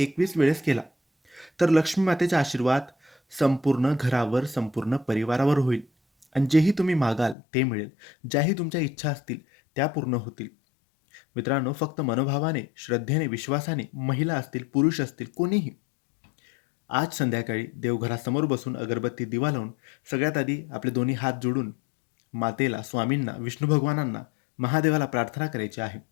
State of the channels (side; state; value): right; drops out; at 7.4 s